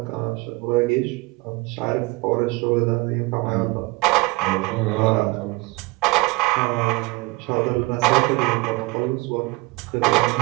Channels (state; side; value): quieter; left; 23.8 dB